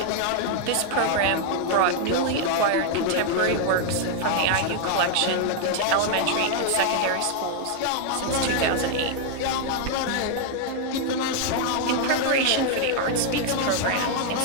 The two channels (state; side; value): different; both; correlation 0.00